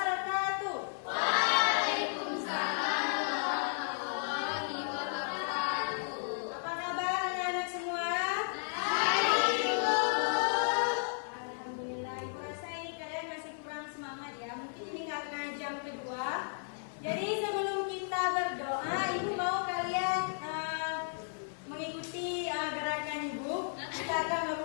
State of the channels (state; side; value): silent; right; 55 dB below the other